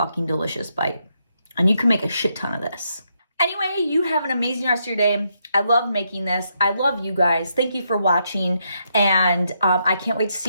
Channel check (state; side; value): inverted; both; correlation -0.78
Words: delicious bite. And you can make a shit ton of this. Anyway, you have an amazing rest of your day. I love making this. I love you guys. Thank you for watching. And I can't wait to